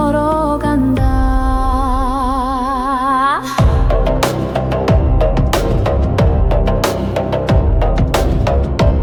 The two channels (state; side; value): identical; both; correlation 1.00